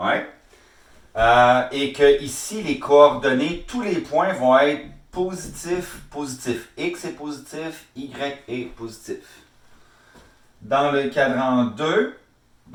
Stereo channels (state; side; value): identical; both; correlation 1.00